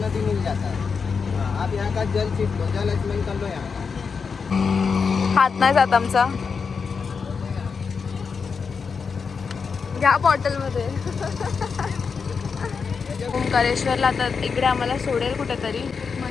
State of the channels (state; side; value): quieter; right; 5.5 dB